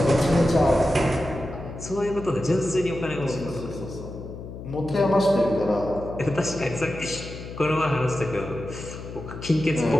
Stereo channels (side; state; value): left; noise; hum, 11 dB below the sound